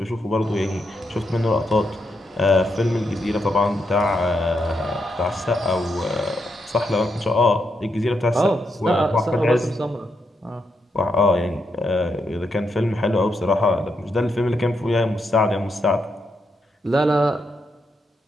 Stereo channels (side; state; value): both; normal; correlation 0.81